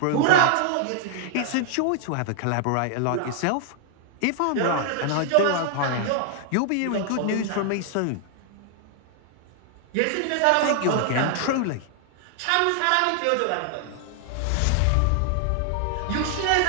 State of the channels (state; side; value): different; both; correlation 0.00